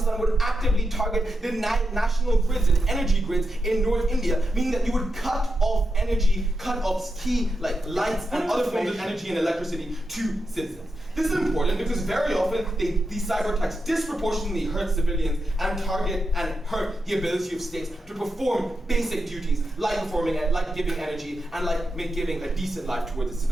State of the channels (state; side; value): normal; both; correlation 0.88